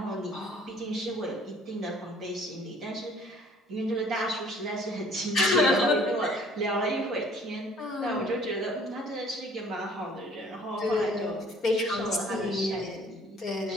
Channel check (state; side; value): normal; both; correlation 0.55